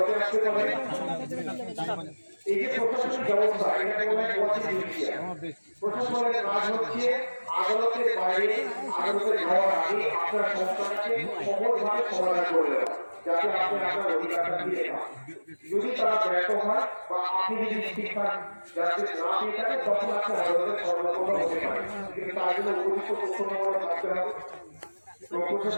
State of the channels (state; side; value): inverted; both; correlation -1.00